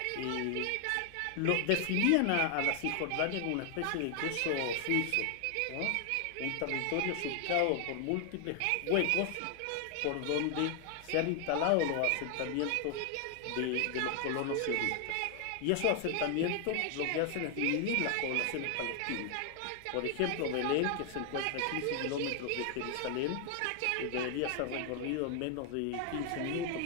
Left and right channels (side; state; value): both; different; correlation 0.00